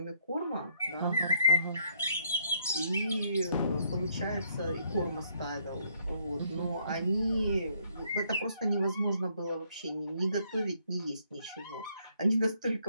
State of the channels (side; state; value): both; inverted; correlation -0.69